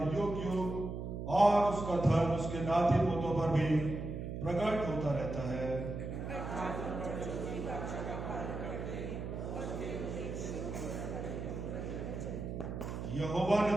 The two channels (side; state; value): right; noise; hum, 5 dB below the sound